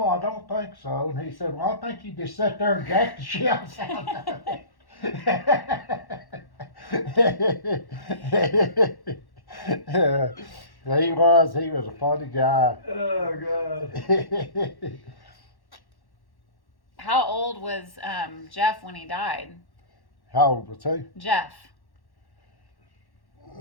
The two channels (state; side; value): late; right; 1.1 ms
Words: I don't think so. And he said, well, I think you just sat there and jacked the shells out of it. He was a funny guy. Oh, God. How old was Jeff when he died? How old was he? Jeff.